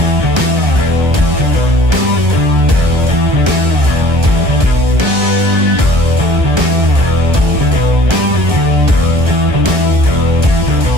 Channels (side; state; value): left; late; 1.3 ms